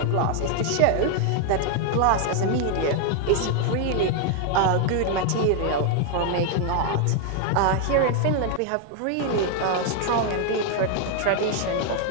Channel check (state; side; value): different; both; correlation 0.00